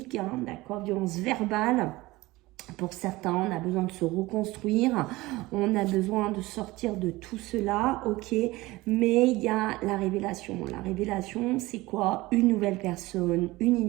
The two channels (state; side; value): quieter; left; 19.9 dB